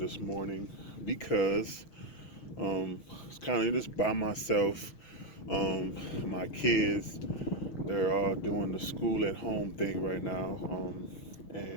morning because it's kind of just by myself. My kids, they're all doing the school at home thing right now,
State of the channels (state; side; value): late; right; 6.4 ms